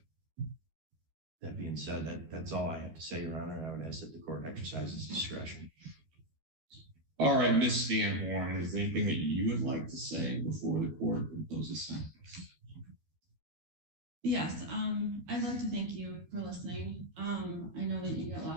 that being said, that's all I have to say, Your Honor, and I would ask that the court exercises discretion. All right, Ms. Van Horn, is there anything that you would like to say before the court imposes sentence? Yes, I'd like to thank you for listening. I know that you get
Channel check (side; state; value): left; late; 13 ms